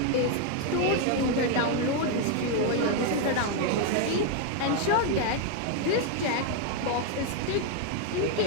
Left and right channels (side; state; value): both; different; correlation 0.01